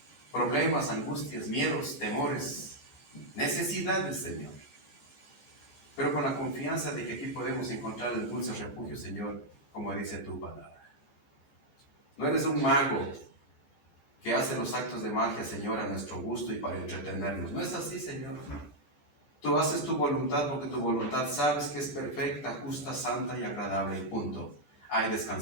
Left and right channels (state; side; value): late; right; 14 ms